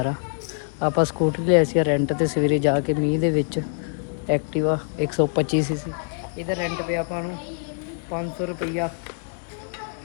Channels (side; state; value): right; silent; 62 dB below the other